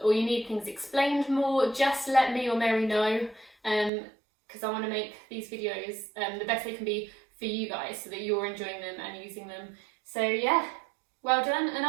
or you need things explained more, just let me or Mary know. Because I want to make these videos the best they can be for you guys so that you're enjoying them and using them. So yeah, well done, and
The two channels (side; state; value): left; drops out; at 3.9 s